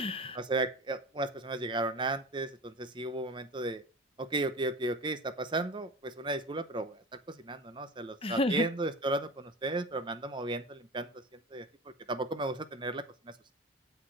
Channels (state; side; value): normal; both; correlation 0.31